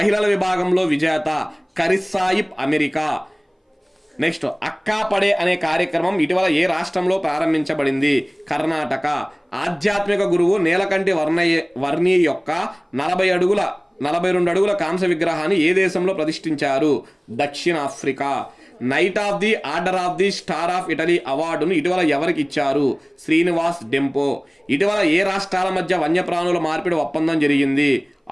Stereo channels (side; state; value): both; identical; correlation 1.00